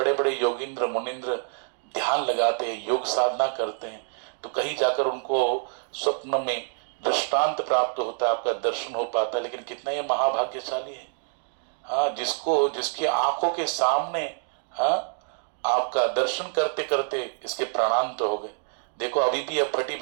बड़े योगिंद्र मुनिंद्र ध्यान लगाते हैं, योग साधना करते हैं, तो कहीं जाकर उनको स्वप्न में दृष्टांत प्राप्त होता है, आपका दर्शन हो पाता है। लेकिन कितना ये महाभाग्यशाली है, जिसकी आंखों के सामने आपका दर्शन करते करते इसके प्राणांत तो हो गए। देखो अभी भी अब फटी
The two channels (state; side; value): silent; left; 61 dB below the other